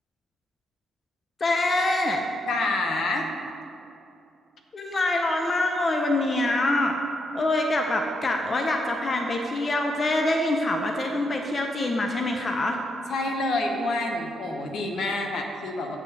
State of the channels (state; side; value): normal; both; correlation 0.79